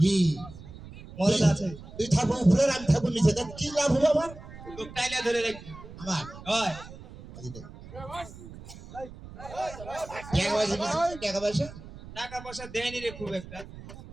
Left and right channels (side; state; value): right; noise; rumble, 15 dB below the sound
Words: কি মদত আছে তুই থাকবো উপরে আমি থাকবো নিচে, তার কি লাভ হবে আমার? তো টাইলা ধরে রাখবি আমার হয় টাকা পয়সা টাকা পয়সা দেয়নি রে খুব একটা